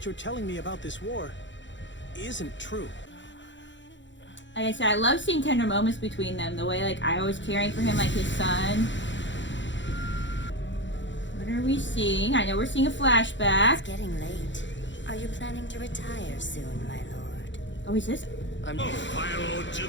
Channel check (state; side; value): late; right; 0.54 ms